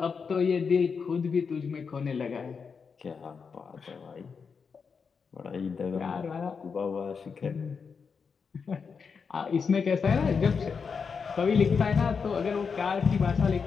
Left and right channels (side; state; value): right; quieter; 5.7 dB